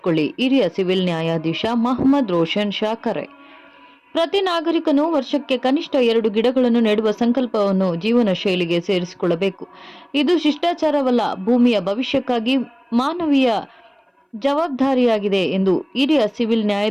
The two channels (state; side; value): identical; both; correlation 1.00